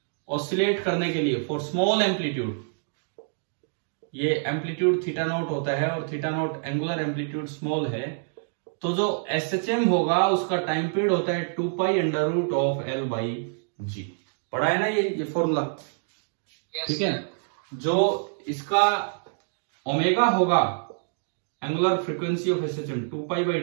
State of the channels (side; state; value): left; silent; digital silence